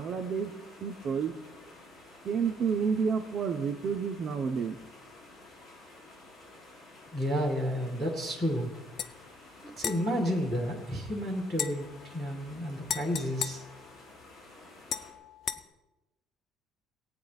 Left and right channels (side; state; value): both; normal; correlation 0.68